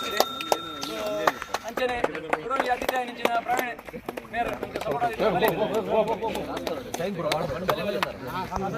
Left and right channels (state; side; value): identical; both; correlation 1.00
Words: ಅಂಚನೆ ಗುರುವಿಗೆ ಅತಿಥಿಯಾಗಿ ನಿಂಚಿನ ಪ್ರವೀಣ್ ಮೇರೆ